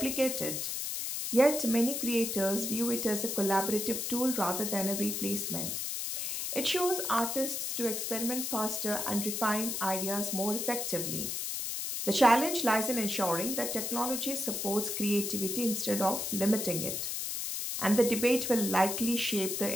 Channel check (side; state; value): left; noise; hiss, 2 dB below the sound